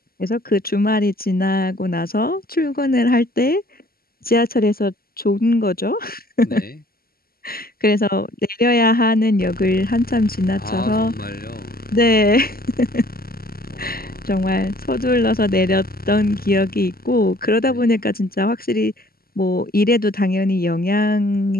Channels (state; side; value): late; right; 0.43 ms